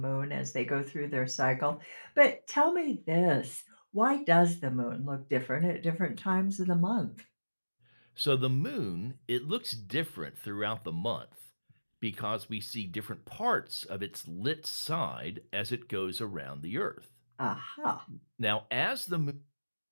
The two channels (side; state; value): both; inverted; correlation -1.00